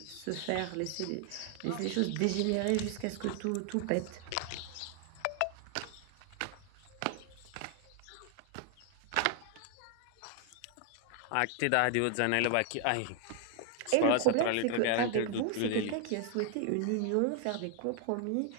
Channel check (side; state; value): both; different; correlation 0.00